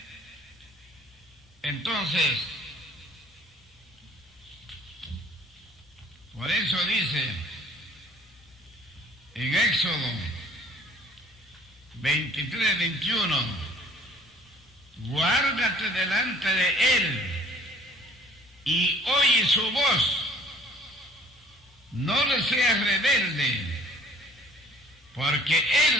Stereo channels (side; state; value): both; normal; correlation 0.53